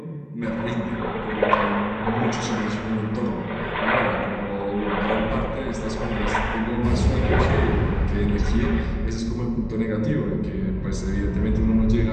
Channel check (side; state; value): both; identical; correlation 1.00